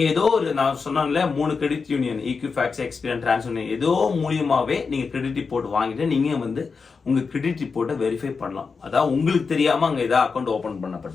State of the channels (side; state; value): right; quieter; 5.0 dB